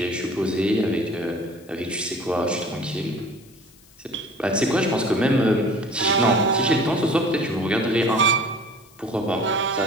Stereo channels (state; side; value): noise; left; hiss, 27 dB below the sound